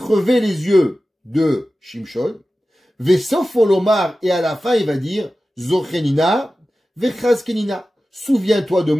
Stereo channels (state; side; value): normal; both; correlation 0.95